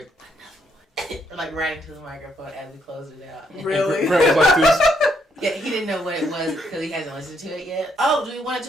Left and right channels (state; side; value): normal; both; correlation 0.74